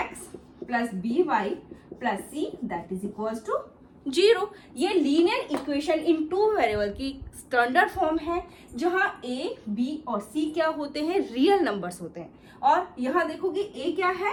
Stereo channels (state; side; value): identical; both; correlation 1.00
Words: + by + c that is equals to 0। ये linear equation in two variable की स्टैंडर्ड फॉर्म है, जहां a, b और c क्या होते हैं? रियल नंबर्स होते हैं। और यहाँ देखोगे a क्या है?